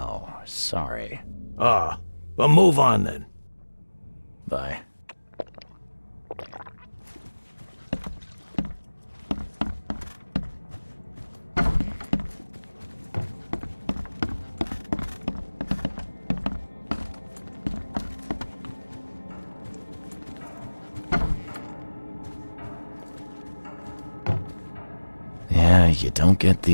sorry. Ah, well, move on then. Bye. Yeah, you don't get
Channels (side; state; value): both; inverted; correlation -1.00